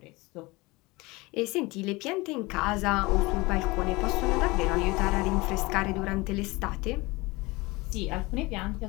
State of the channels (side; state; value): right; quieter; 23.0 dB